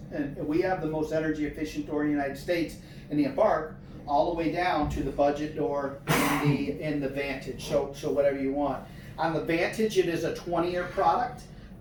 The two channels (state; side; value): identical; both; correlation 1.00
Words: and we have the most energy efficient door in the United States in the Embark, all the way down to the budget door in the Vantage. So whatever you want. On the Vantage, it is a 20-year product